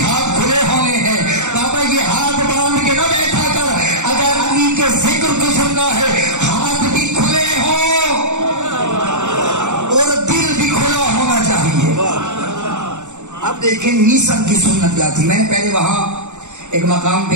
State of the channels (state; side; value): late; left; 0.84 ms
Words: ہاتھ کھلے ہونے ہیں۔ بابا یہ ہاتھ باندھ کے نہ بیٹھا کر، اگر علی کے ذکر کو سننا ہے ہاتھ بھی کھلے ہوں اور دل بھی کھلا ہونا چاہیے۔ اب دیکھیں میسن کی سنت کیا تھی، میں نے پہلے وہاں ایک مقام پہ